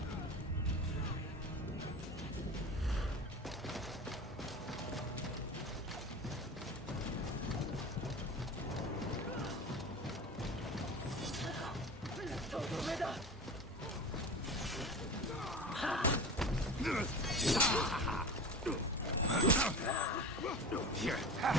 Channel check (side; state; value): both; normal; correlation 0.33